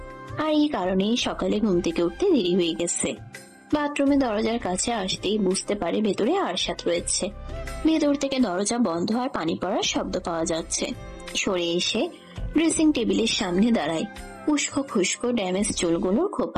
আর এই কারণেই সকালে ঘুম থেকে উঠতে দেরি হয়ে গেছে। বাথরুমে দরজার কাছে আসতেই বুঝতে পারে ভেতরে আরশাদ রয়েছে। ভেতর থেকে দরজা বন্ধ আর পানি পড়ার শব্দ পাওয়া যাচ্ছে। সরে এসে ড্রেসিং টেবিলের সামনে দাঁড়ায়। উস্কো খুস্কো ড্যামেজ চুলগুলোর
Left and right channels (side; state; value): both; identical; correlation 1.00